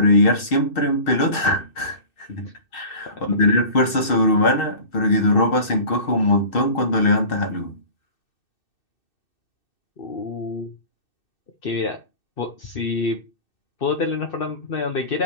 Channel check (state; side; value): late; right; 2.6 ms